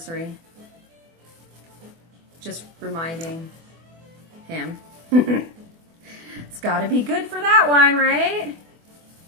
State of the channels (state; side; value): late; left; 24 ms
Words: Just reminding him. It's gotta be good for that one, right?